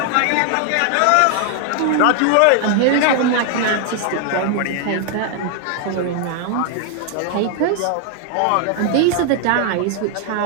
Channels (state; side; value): different; both; correlation 0.00